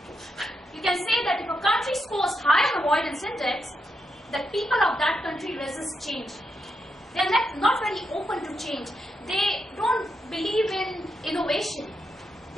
you can say that if a country scores high on Avoidance Index, the people of that country resist change. They are not very open to change. They don't believe in innovation.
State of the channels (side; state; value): both; normal; correlation 0.82